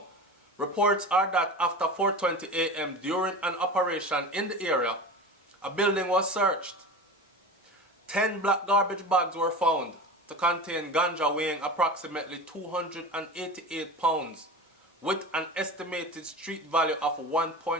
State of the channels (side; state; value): both; normal; correlation 0.31